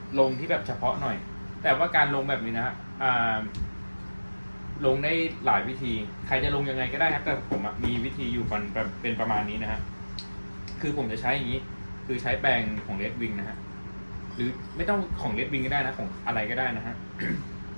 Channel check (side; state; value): both; inverted; correlation -1.00